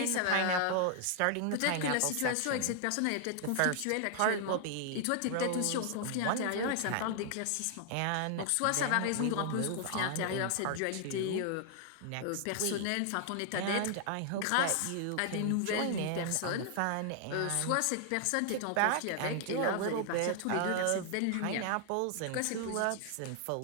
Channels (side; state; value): both; different; correlation 0.00